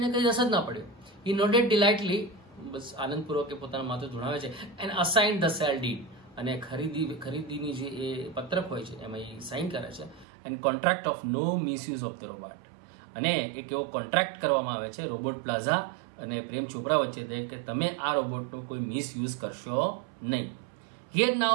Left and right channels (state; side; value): drops out; left; at 10.2 s